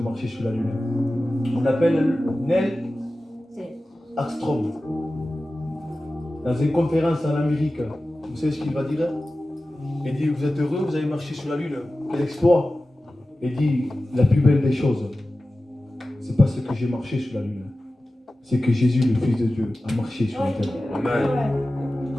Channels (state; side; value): normal; both; correlation 0.95